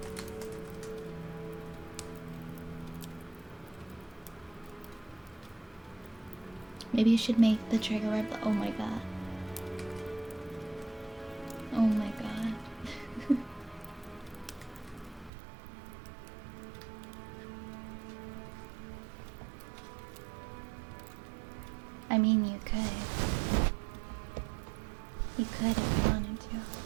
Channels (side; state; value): left; drops out; at 15.3 s